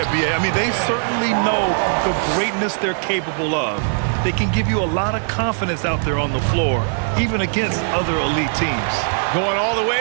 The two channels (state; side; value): silent; left; 66 dB below the other